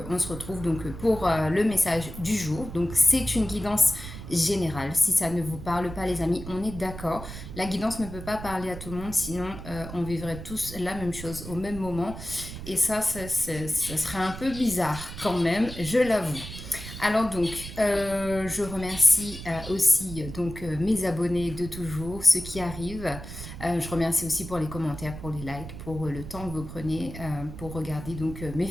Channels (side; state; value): right; noise; rumble, 11 dB below the sound